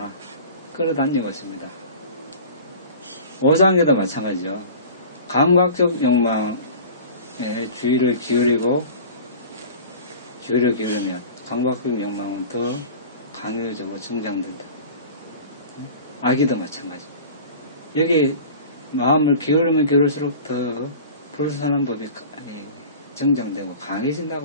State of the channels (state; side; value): inverted; both; correlation -0.39